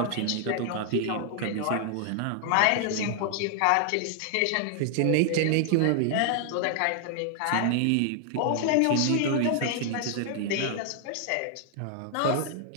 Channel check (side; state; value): both; different; correlation 0.00